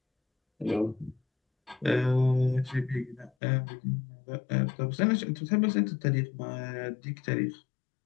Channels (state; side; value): drops out; right; at 3.3 s